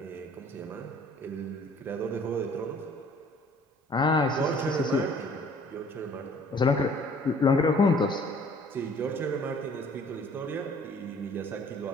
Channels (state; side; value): normal; both; correlation 0.55